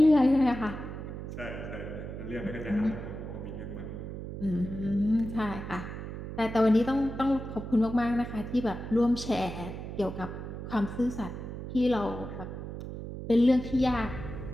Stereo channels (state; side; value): noise; right; hum, 8 dB below the sound